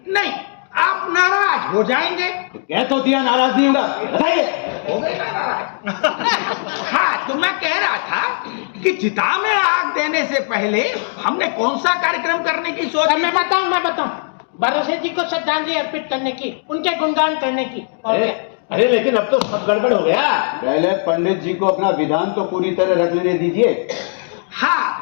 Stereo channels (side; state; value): right; silent; 67 dB below the other